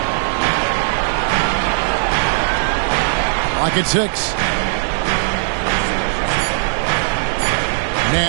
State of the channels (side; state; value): left; silent; digital silence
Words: Like it's 6.